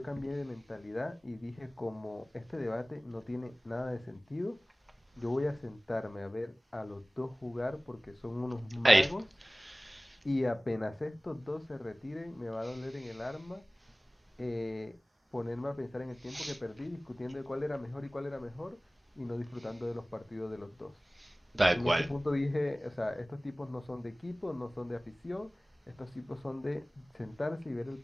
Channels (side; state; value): both; normal; correlation 0.98